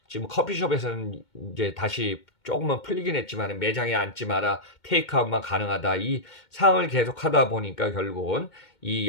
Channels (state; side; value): late; right; 2.2 ms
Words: 지금 커피숍에서는 이제 다시 조금은 풀리긴 했지만 매장에 앉지 마라 테이크아웃만 가능하다 이 상황을 계속 하다 보니까 결국은 이